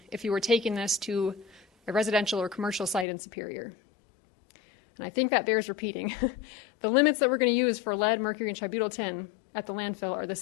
if you were taking this to a residential or commercial site in Superior. And I think that bears repeating. The limits that we're going to use for lead, mercury, and tributyltin at the landfill are the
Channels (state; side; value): drops out; right; at 3.1 s